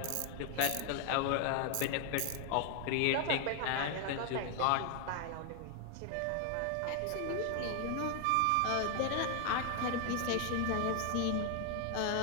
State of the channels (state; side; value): different; both; correlation 0.00